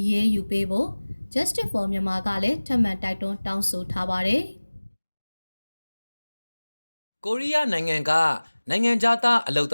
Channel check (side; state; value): both; inverted; correlation -1.00